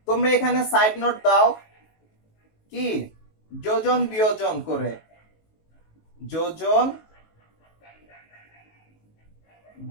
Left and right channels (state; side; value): late; right; 19 ms